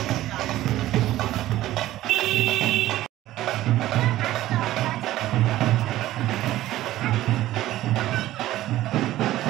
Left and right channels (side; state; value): left; quieter; 15.0 dB